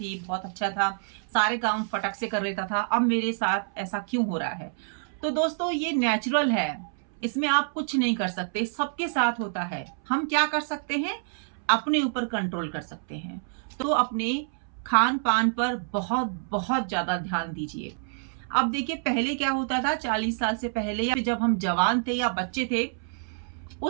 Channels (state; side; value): silent; left; 60 dB below the other